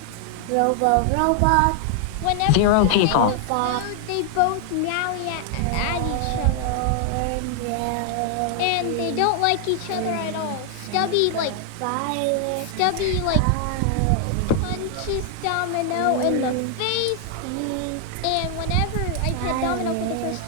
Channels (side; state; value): both; different; correlation 0.00